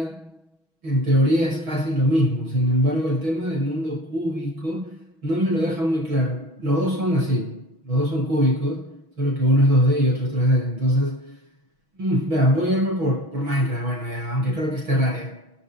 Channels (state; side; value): late; left; 6.2 ms